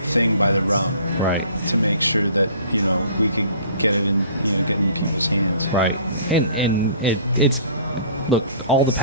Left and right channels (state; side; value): inverted; both; correlation -0.50